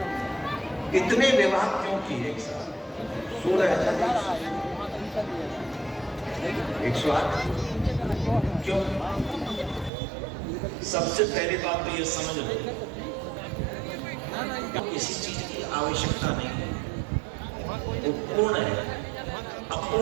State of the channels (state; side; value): drops out; left; at 9.9 s